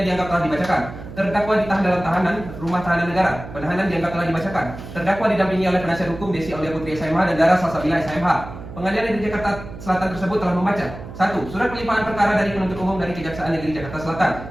dianggap telah dibacakan. Terdakwa ditahan dalam tahanan Rumah Tahanan Negara. Penahanan dianggap telah dibacakan. Terdakwa didampingi oleh penasihat hukum Desi Aulia Putri SMH dan Dara Salsabila SMH. Pengadilan Negeri Jakarta Selatan tersebut telah membaca 1. Surat pelimpahan perkara dari penuntut umum dari Kejaksaan Negeri Jakarta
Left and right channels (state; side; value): noise; right; hum, 12 dB below the sound